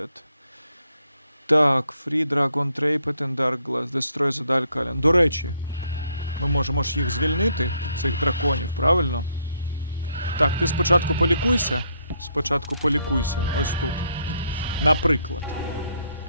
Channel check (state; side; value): inverted; both; correlation -0.72